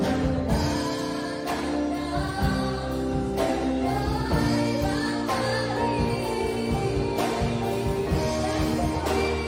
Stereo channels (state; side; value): identical; both; correlation 1.00